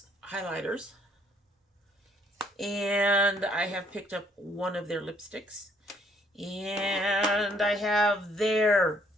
highlighters. And I have picked up one of their lipsticks. And I have their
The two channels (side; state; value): both; normal; correlation 0.65